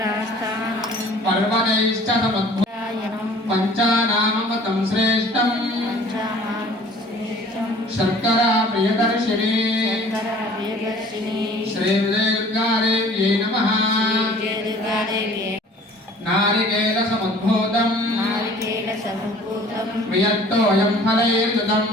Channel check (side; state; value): both; normal; correlation 0.50